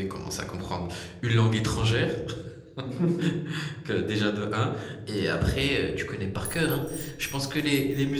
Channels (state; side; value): identical; both; correlation 1.00